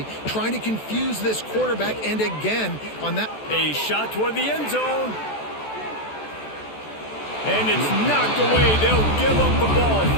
trying to confuse this quarterback, and again on that. A shot toward the end zone. And it's knocked away. They'll give up the ball,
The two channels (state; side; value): late; right; 14 ms